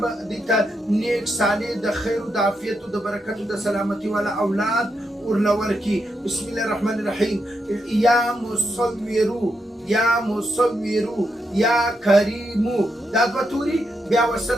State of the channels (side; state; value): both; normal; correlation 0.83